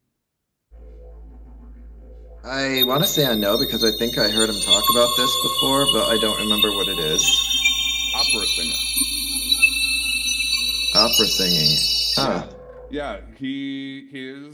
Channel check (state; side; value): identical; both; correlation 1.00